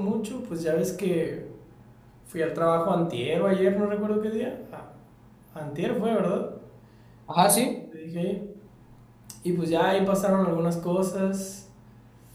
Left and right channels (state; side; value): identical; both; correlation 1.00